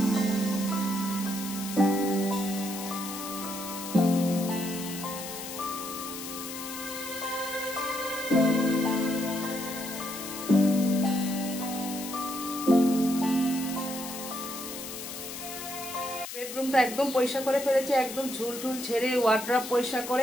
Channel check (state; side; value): noise; left; hiss, 9 dB below the sound